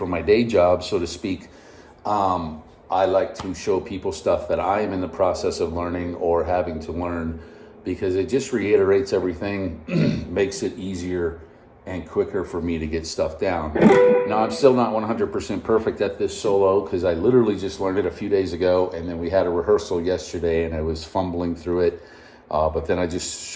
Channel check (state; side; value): identical; both; correlation 1.00